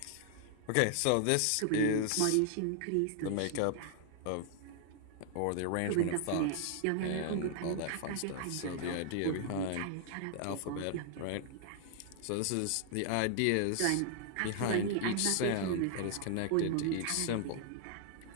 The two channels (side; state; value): both; different; correlation 0.00